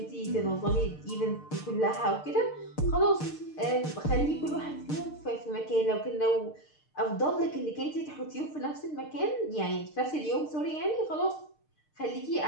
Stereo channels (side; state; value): right; late; 6.6 ms